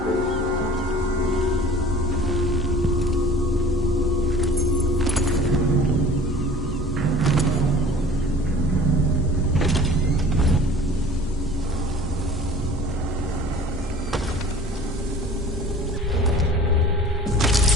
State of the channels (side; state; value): both; normal; correlation 0.46